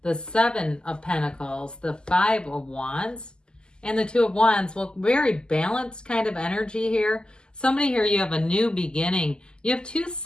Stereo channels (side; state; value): right; late; 0.047 ms